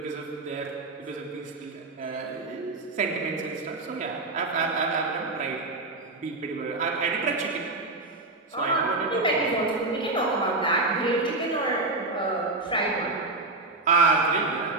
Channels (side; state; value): left; quieter; 3.1 dB